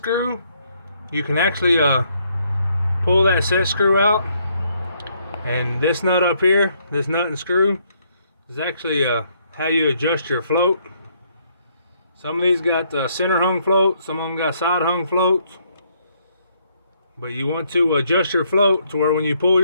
you can actually pull that set screw out. And this nut up here, this nut and screw, is actually how you adjust your float. Some of these got center hung floats, some of them got side hung floats. But you want to adjust your float to where when you pull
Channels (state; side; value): inverted; both; correlation -0.70